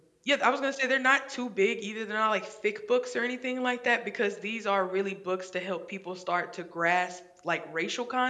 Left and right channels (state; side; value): identical; both; correlation 1.00